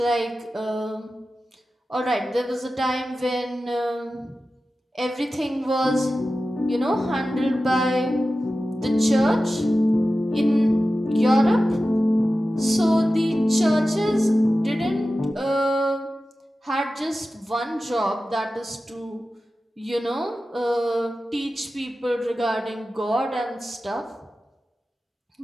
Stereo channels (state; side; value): normal; both; correlation 0.94